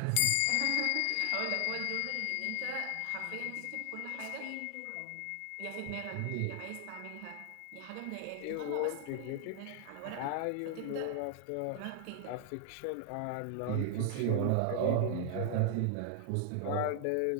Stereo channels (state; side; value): different; both; correlation 0.00